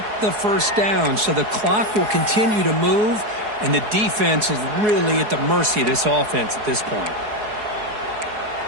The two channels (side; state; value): left; late; 4.7 ms